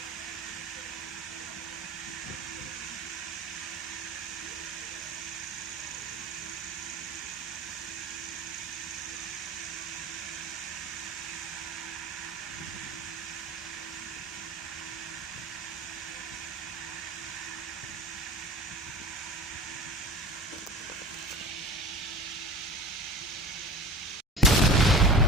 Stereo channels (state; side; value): normal; both; correlation 0.38